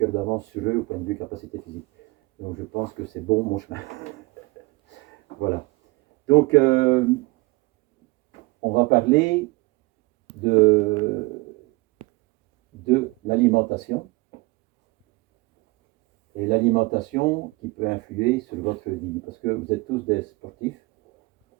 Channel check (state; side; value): quieter; left; 24.4 dB